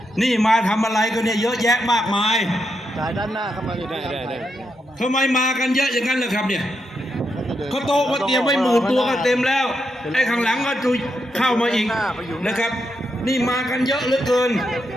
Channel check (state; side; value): normal; both; correlation 0.83